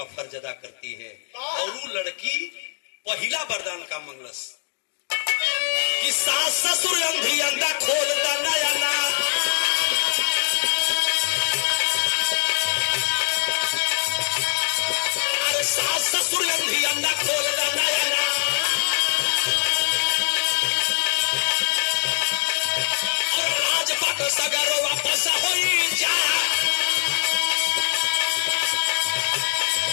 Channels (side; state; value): right; silent; digital silence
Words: फर्ज अदा करती है। और वो लड़की पहला वरदान का मंगलस कि सास ससुर अंधी अंधा खोल दा नया ना। अरे सास ससुर अंधी अंधा खोल दा नया ना। और राजपाट सगरो वापस होई जा।